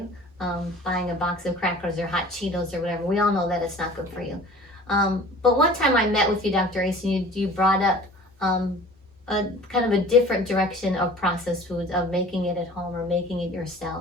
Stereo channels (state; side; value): normal; both; correlation 0.45